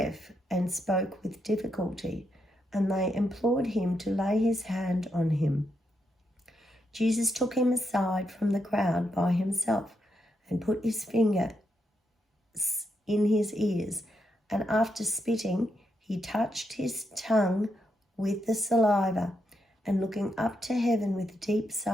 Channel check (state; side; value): normal; both; correlation 0.81